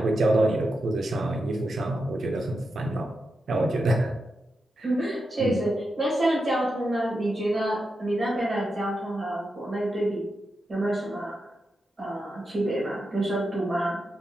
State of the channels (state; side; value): normal; both; correlation 0.88